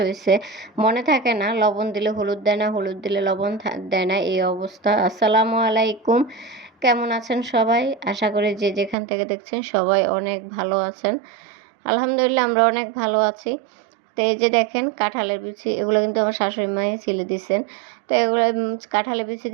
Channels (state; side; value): drops out; left; at 9.0 s